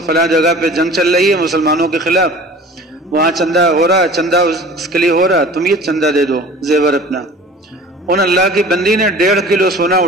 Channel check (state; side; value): normal; both; correlation 0.43